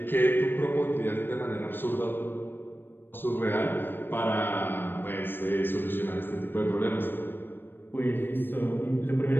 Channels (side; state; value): right; late; 0.097 ms